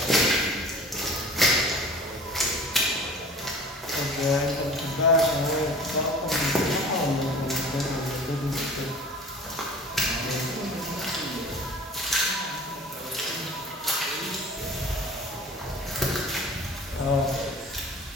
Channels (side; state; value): both; normal; correlation 0.43